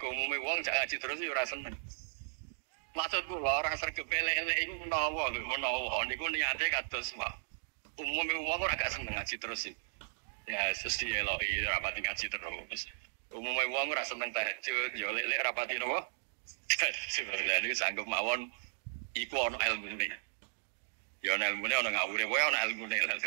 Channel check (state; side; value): silent; left; digital silence